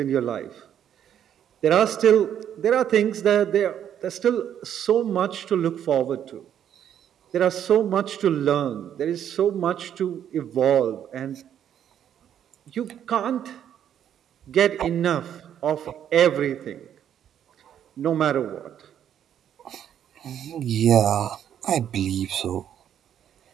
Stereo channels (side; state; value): left; quieter; 9.7 dB